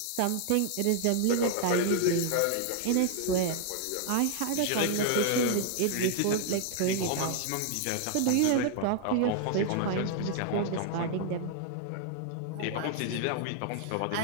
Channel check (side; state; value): both; different; correlation 0.00